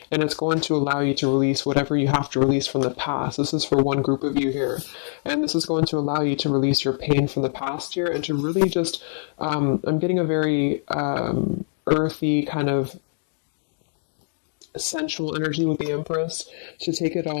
and it's going to allow you to release whatever you have to release from the past. This is for one group of you here, and this is going to allow you to release your pain from the past here and to really just, I'm getting a very earthy kind of sensual energy with the Empress, to take it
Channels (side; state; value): right; silent; digital silence